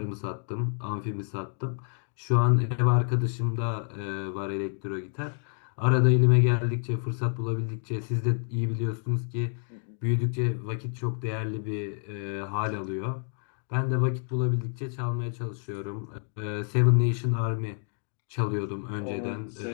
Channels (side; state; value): right; silent; 55 dB below the other